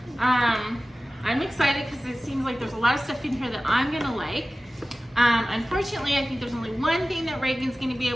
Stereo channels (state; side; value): normal; both; correlation 0.96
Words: I'm excited because it seems like there's a lot of stuff in here that I'm gonna like. Unfortunately, I think there's only one thing that Reagan's gonna be